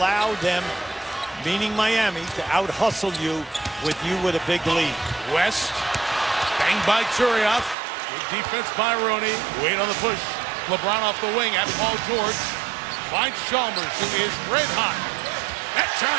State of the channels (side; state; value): left; drops out; at 7.8 s